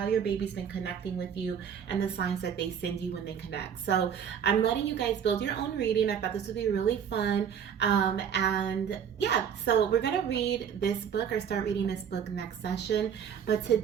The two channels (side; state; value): left; quieter; 8.0 dB